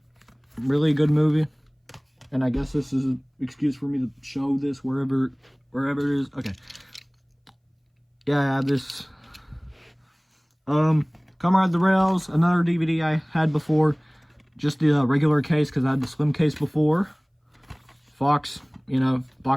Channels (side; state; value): both; identical; correlation 1.00